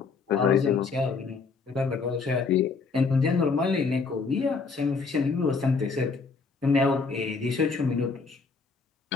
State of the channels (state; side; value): quieter; right; 4.7 dB